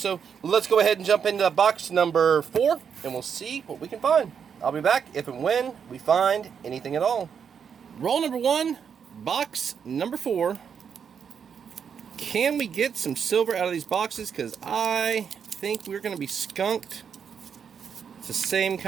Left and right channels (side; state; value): left; quieter; 7.2 dB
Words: let's go ahead and jump into box number 4. And we'll see what we can find. I'll be back if and when we find anything at all. Roll number 1. Box number 4. Can we get some silver out of these boxes? Because I think we're going to be skunked. It's the same